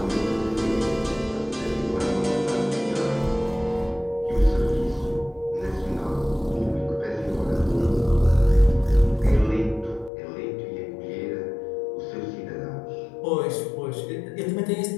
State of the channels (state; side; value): drops out; right; at 10.1 s